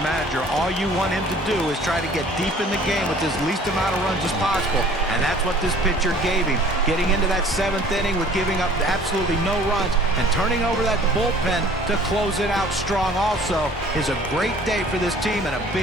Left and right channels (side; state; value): both; normal; correlation 0.51